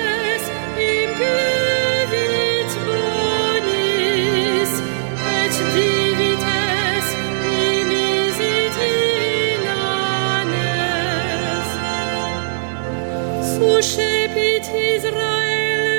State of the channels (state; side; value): silent; left; 67 dB below the other